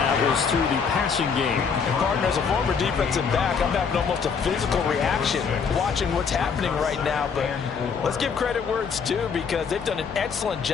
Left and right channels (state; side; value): quieter; right; 6.0 dB